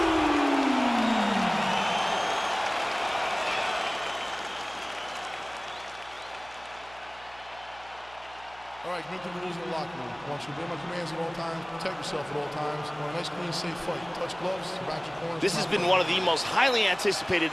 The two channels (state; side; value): noise; right; hum, 23 dB below the sound